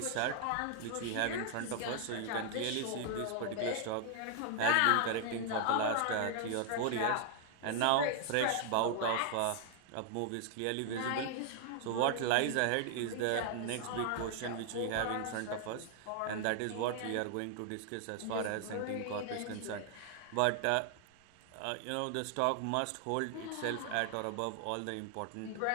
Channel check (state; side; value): different; both; correlation 0.00